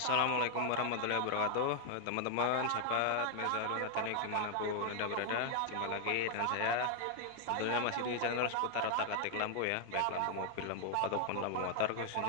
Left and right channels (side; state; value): both; different; correlation 0.00